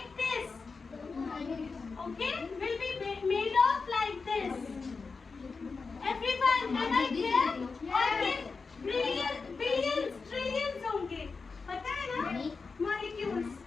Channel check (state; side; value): quieter; right; 4.6 dB